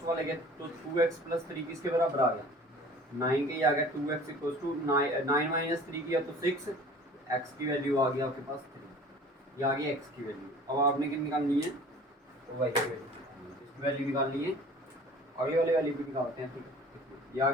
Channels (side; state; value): both; normal; correlation 0.46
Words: वाले के, तो 2x प्लस 3 किसके बराबर आ गया, 9 के। ये आ गया 2x इक्वल्स टू 9 माइनस 3 किया तो 6, x की वैल्यू आ गया आपके पास 3, ये आ गई x की वैल्यू। अब आपने क्या निकालनी है, तो y की वैल्यू, इसकी वैल्यू निकालनी है। अगले वाले वैल्यू भी निकालते हैं। ठीक है, ये आ